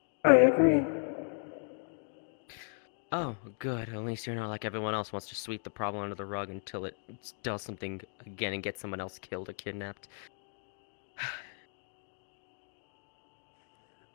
I agree. Oh, good. At least you're not like everyone else wants to sweep the problem under the rug until it does something again and gets someone else killed or kidnapped.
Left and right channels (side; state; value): right; silent; 54 dB below the other